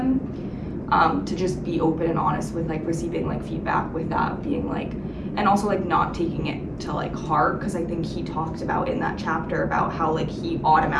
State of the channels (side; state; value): both; identical; correlation 1.00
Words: to just be open and honest with like receiving like feedback with that being like, and also like not taking it to like heart, because I think he talked about in that chapter about how like he